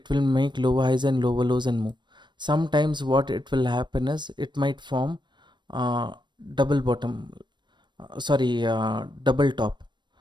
will make lower highs and lower lows and move. Sometimes what it will happen is it might form uh, double bottom, double top.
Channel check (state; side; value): late; left; 0.22 ms